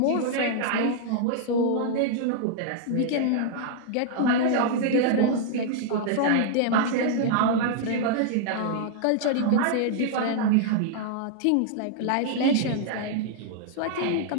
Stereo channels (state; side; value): different; both; correlation -0.01